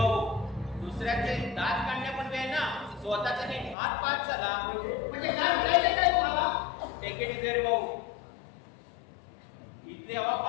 दुसऱ्याचे दात काढण्यापूर्वी वेळ ना स्वतःचा नीट हात पाच झाला. म्हणजे काय म्हणायचं काय तुम्हाला? टेकेट इथे भाऊ, इथली हवा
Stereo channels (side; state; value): right; drops out; at 3.8 s